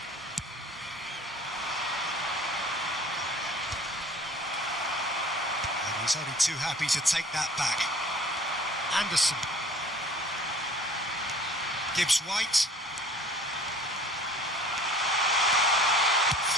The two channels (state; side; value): normal; both; correlation 0.49